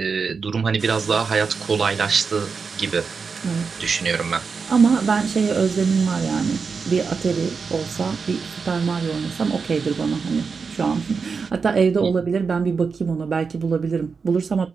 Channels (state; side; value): quieter; left; 5.2 dB